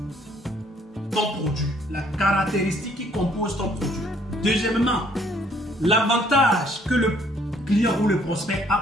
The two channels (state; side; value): normal; both; correlation 0.64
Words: ton produit, la caractéristique qui compose ton produit. Deuxièmement, l'avantage que le client ou le prospect